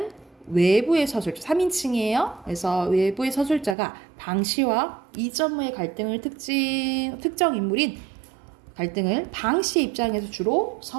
외부의 서술자, 3인칭이에요. 그래서 외부의 서술자가 방씨와 이전무의 갈등을 특정 인물인 갈등을 방씨 입장에서 주로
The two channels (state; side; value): drops out; left; at 3.8 s